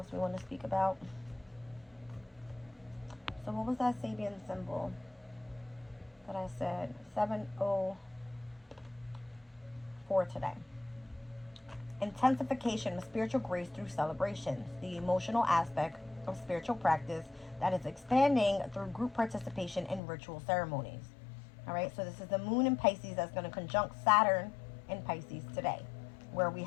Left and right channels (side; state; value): right; drops out; at 20.0 s